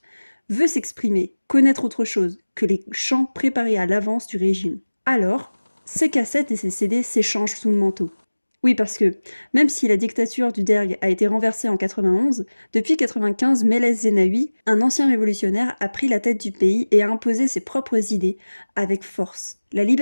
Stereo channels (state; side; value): inverted; both; correlation -1.00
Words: veut s'exprimer, connaître autre chose que les chants préparés à l'avance du régime. Alors, ses cassettes et ses CD s'échangent sous le manteau. Oui, parce que, même si la dictature du Derg a été renversée en 91, depuis 95, Meles Zenawi, un ancien révolutionnaire, a pris la tête du pays et a imposé ses propres idées avec force. La